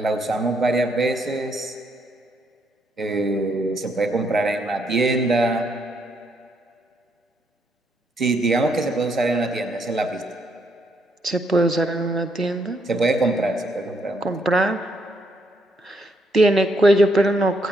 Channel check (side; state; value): both; normal; correlation 0.74